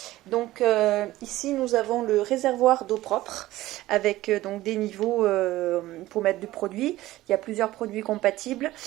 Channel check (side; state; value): left; quieter; 16.5 dB